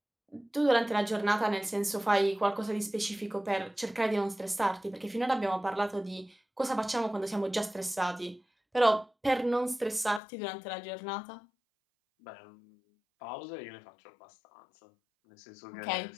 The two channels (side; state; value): right; drops out; at 10.2 s